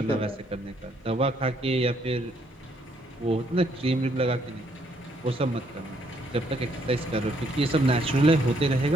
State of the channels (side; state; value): both; normal; correlation 0.70